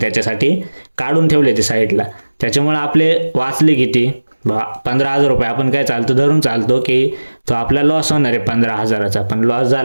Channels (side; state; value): both; inverted; correlation -1.00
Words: त्याच्यासाठी काढून ठेवले ते साईडला. त्याच्यामुळे आपले वाचले किती, 15,000 रुपये. आपण काय धरून चालतो की तो आपला लॉस होणार आहे 15,000चा, पण लॉस